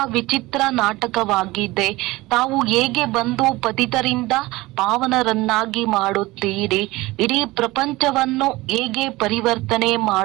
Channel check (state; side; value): quieter; left; 20.1 dB